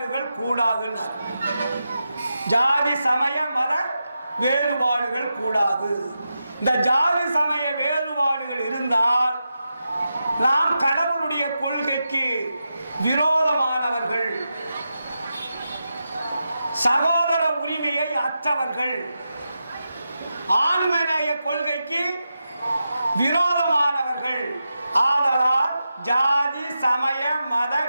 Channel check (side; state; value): both; inverted; correlation -0.89